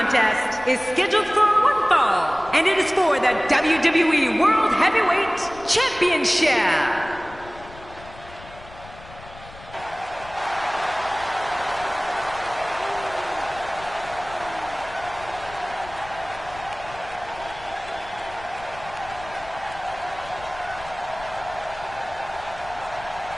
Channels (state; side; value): noise; left; rumble, 18 dB below the sound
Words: is scheduled for one fall, and it is for the WWE World Heavyweight Championship.